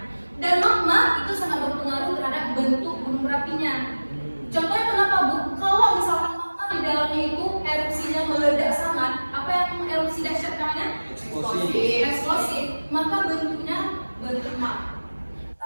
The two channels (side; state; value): both; inverted; correlation -1.00